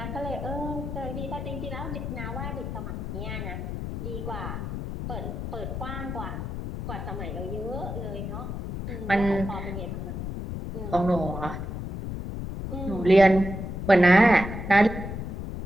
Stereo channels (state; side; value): noise; left; rumble, 5 dB below the sound